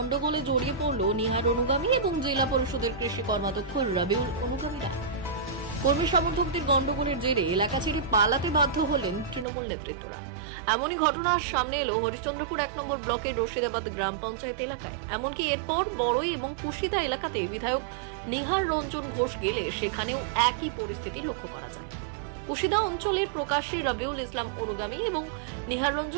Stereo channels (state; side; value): drops out; left; at 9.5 s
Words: জড়িয়ে পড়ল নিহার অনুগামী এবং জেলা পরিষদের কৃষি কর্মাধ্যক্ষ রবিউল অনুগামীরা। কর্মী সমর্থকদের গন্ডগোলের জেরে এলাকা ছেড়ে পালাতে বাধ্য হলেন তৃণমূল নেতৃত্বরা। এমনই ঘটনার সামনে এলো হরিশ্চন্দ্রপুর 1 নম্বর ব্লকের রশিদাবাদ গ্রাম পঞ্চায়েত এলাকায়। এমনকি এরপর বড়ই এবং কুশিদা এলাকাতে বিধায়ক নিহার রঞ্জন ঘোষ গেলে সেখানেও একই পরিস্থিতি লক্ষ্য করা যায়। কুশিদা অঞ্চলের প্রকাশ্যে রবিউল ইসলাম অনুগামী এবং নিহার